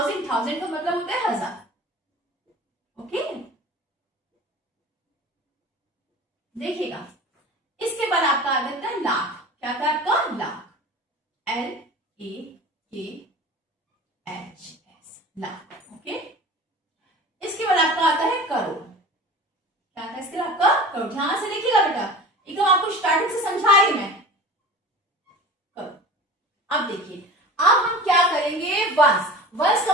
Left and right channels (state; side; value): normal; both; correlation 0.38